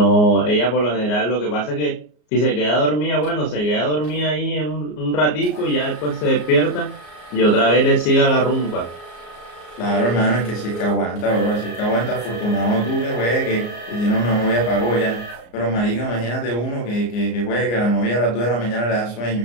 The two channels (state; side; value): late; right; 34 ms